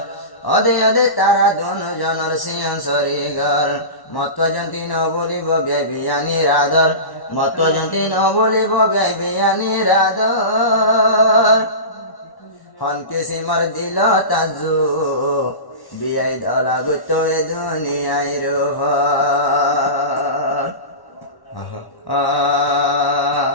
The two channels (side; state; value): right; late; 1.1 ms